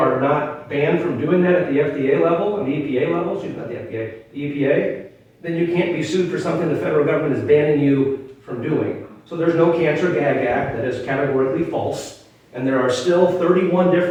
not banned from doing that at the FDA level, and the EPA level, excuse me, not the FDA, the EPA, then you can't be sued for something the federal government is banning you from doing. So there's no Cancer Gag Act. That is categorically false. And there are still 31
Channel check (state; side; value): identical; both; correlation 1.00